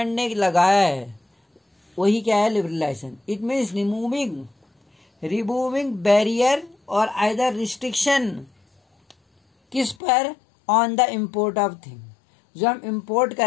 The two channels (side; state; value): right; drops out; at 10.0 s